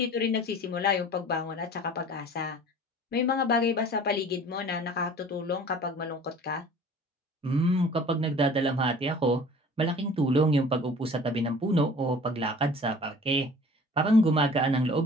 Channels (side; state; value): both; normal; correlation 0.46